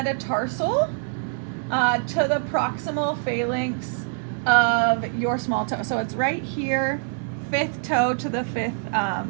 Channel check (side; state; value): left; silent; digital silence